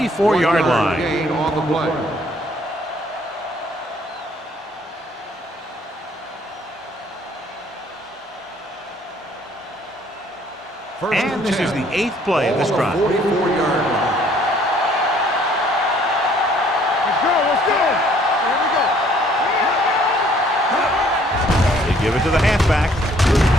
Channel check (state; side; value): normal; both; correlation 0.61